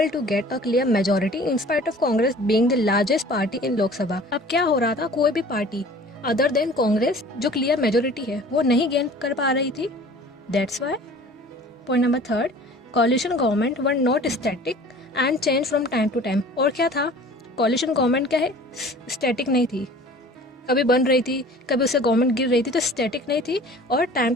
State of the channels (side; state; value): both; normal; correlation 0.46